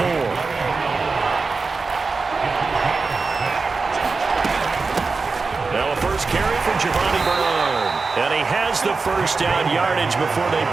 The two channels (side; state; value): left; quieter; 4.3 dB